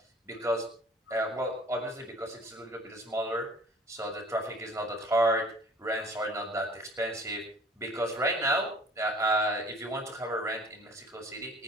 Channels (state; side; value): normal; both; correlation 0.50